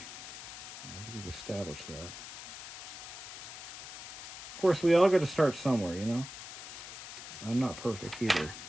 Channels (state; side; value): noise; left; hiss, 11 dB below the sound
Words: think we've established that. Of course, we all got to start somewhere, you know? I'm not perfect either.